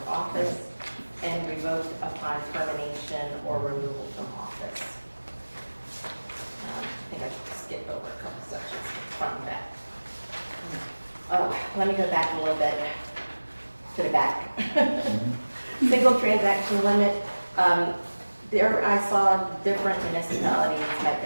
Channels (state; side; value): inverted; both; correlation -1.00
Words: office and revoked upon termination or removal from office. I think I should skip over a couple sections from that. Let me go back a little bit to the back. Single transaction limit. There I saw different municipalities had